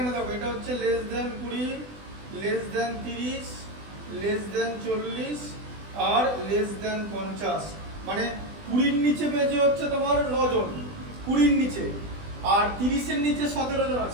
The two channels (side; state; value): left; late; 20 ms